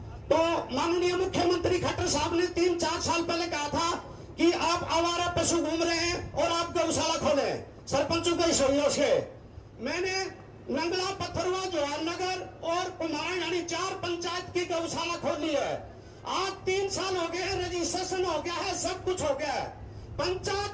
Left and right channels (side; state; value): both; identical; correlation 1.00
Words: तो माननीय मुख्यमंत्री खट्टर साहब ने 3-4 साल पहले कहा था कि आप आवारा पशु घूम रहे हैं और आप गौशाला खोलें सरपंचों के सहयोग से। मैंने नंगला, पत्थरवा, जवाहरनगर और कुमाऊं यानी 4 पंचायत की गौशाला खोली है। आज 3 साल हो गए, रजिस्ट्रेशन हो गया है, सब कुछ हो गया है।